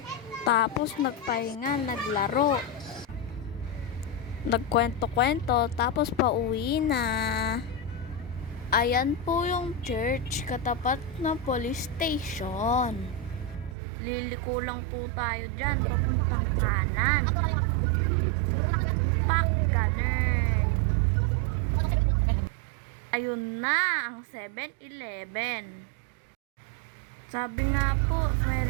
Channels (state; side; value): drops out; left; at 13.8 s